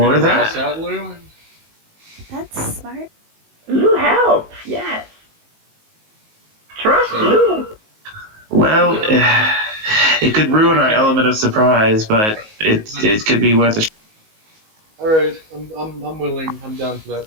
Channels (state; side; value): late; left; 19 ms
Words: gonna that. pass out, Lou? That's smart. Lou helps, yes. Trust So- Lou. Well, it could ruin our element of surprise, but it could be worth a. All right, I'm willing. I'm down for that